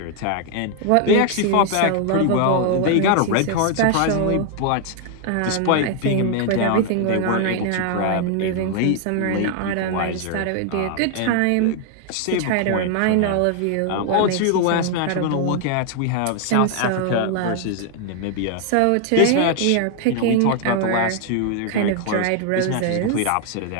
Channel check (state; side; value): different; both; correlation 0.00